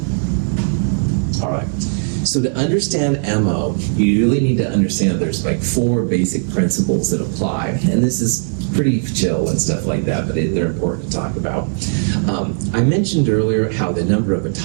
All right. So to understand MO, you really need to understand there's like 4 basic principles that apply. And this is pretty chill and stuff like that, but they're important to talk about. I mentioned earlier how the number of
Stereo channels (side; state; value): left; silent; 67 dB below the other